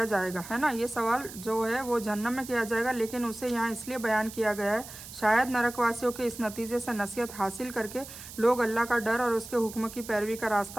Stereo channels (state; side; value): noise; right; hiss, 14 dB below the sound